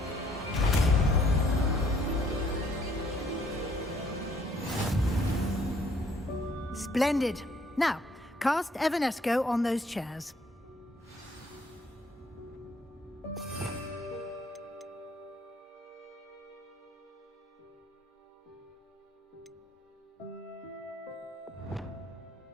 Splendid. Now, cast Evanesco on those chairs.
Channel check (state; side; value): normal; both; correlation 0.64